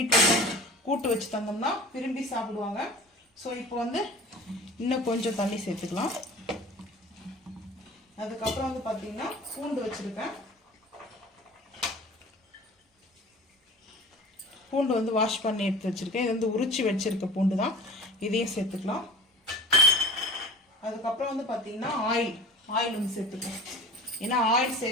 கூட்டு வச்சு தந்தோம்னா விரும்பி சாப்பிடுவாங்க. ஸோ இப்போ வந்து இன்னும் கொஞ்சம் தண்ணி சேர்த்துக்கலாம். அதுக்கப்புறம் வந்து பார்த்தீங்கன்னா பூண்டு வச்சுருக்கேன். பூண்டு வந்து வாஷ் பண்ணி எடுத்து வச்சுருக்கேன். இது வந்து உரிச்சு வச்சுருக்க பூண்டு தான். இதையும் சேர்த்துக்கலாம். அதுக்கப்புறம் வந்து பார்த்தீங்கன்னா ஆயில் வந்து சேர்த்துக்கலாம். ஏன்னா ஆயில்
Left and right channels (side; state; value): both; normal; correlation 0.41